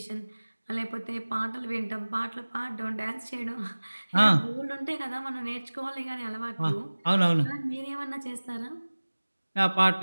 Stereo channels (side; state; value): both; inverted; correlation -1.00